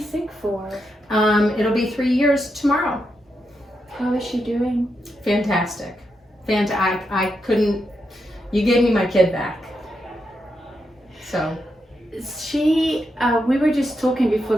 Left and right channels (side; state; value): both; normal; correlation 0.84